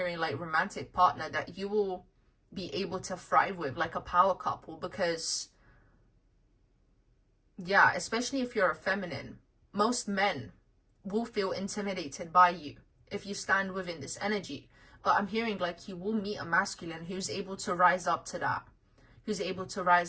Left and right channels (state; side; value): identical; both; correlation 1.00